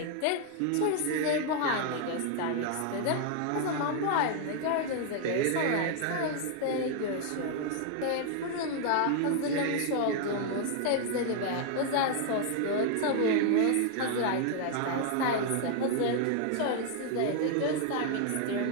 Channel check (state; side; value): different; both; correlation 0.00